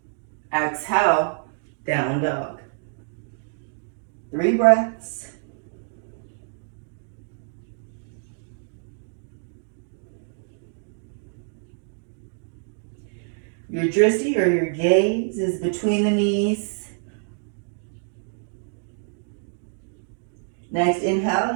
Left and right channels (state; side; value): silent; left; digital silence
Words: Exhale, down dog. 3 breaths. Your drishti or your gaze is between the knees. Next